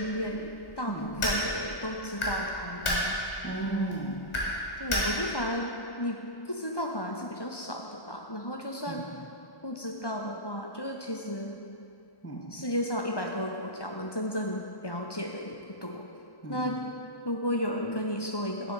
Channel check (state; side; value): late; right; 1.1 ms